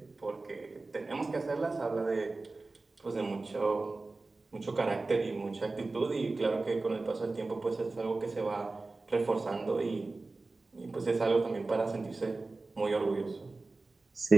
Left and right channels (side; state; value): left; quieter; 3.4 dB